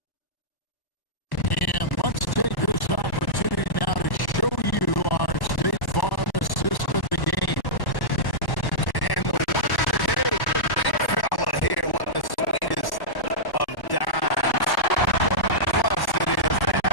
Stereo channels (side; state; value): right; late; 1.1 ms